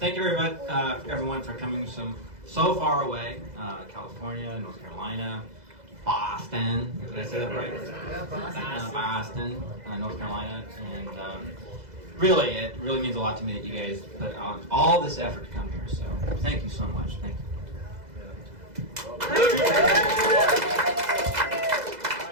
you very much, everyone, for coming so far away. California, North Carolina, Boston. Did I say that right? Yeah, Boston, North Carolina, and really, it really means a lot to me that you guys put on all this effort to come here. So, thank you so much. Thank you.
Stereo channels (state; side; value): late; left; 2.0 ms